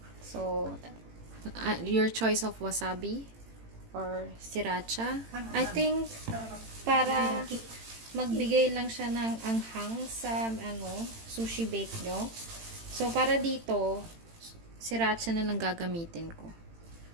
So, your choice of wasabi or siracha. I think, para magbigay lang siya ng anghang sa sushi bake nyo. So, para dito, siracha na lang gagamitin ko.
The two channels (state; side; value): late; left; 18 ms